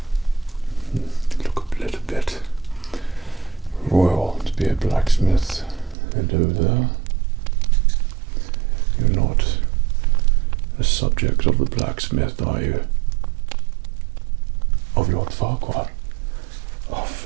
Look a little bit royal to be a blacksmith. Hello there. You're not a subject of the blacksmith, are you? Of Lord Farquhar?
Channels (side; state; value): left; drops out; at 6.0 s